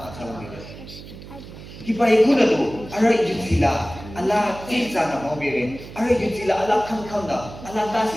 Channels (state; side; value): noise; right; hum, 15 dB below the sound